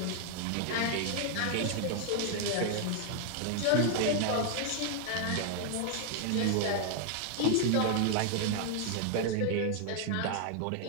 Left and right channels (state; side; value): different; both; correlation 0.00